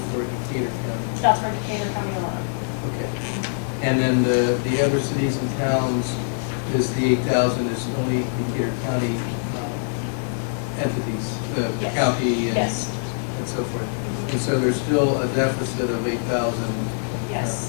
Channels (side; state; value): right; silent; digital silence